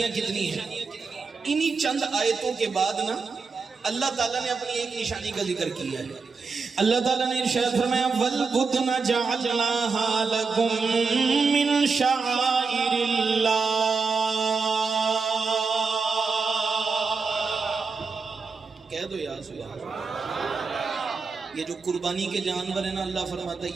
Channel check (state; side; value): quieter; left; 4.7 dB